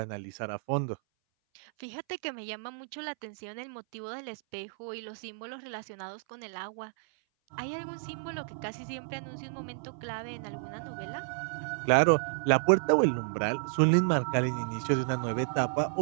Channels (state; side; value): silent; left; 57 dB below the other